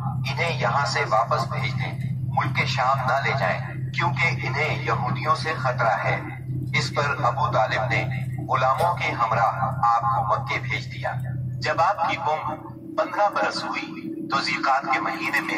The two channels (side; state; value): both; identical; correlation 1.00